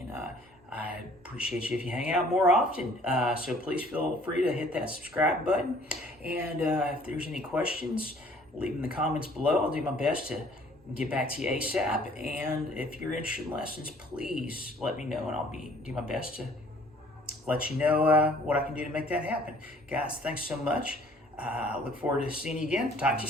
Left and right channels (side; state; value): both; normal; correlation 0.56